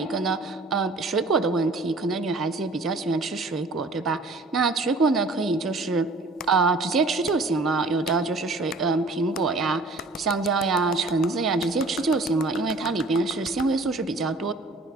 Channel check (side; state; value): left; quieter; 3.2 dB